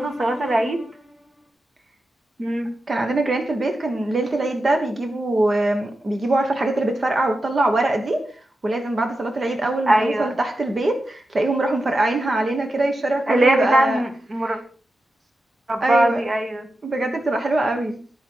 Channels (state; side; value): normal; both; correlation 0.90